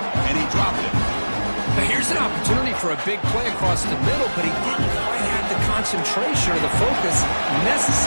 and he dropped it. Now here's an opportunity for a big play across the middle, but he didn't quite have the concentration or the focus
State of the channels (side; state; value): both; inverted; correlation -1.00